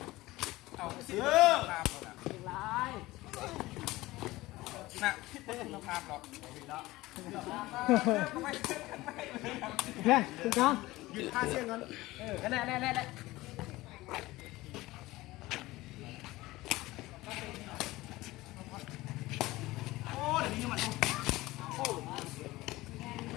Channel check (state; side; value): quieter; right; 18.9 dB